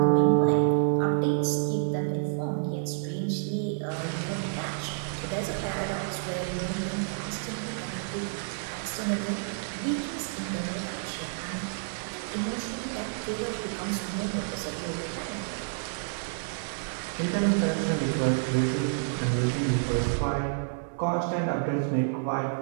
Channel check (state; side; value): silent; left; 59 dB below the other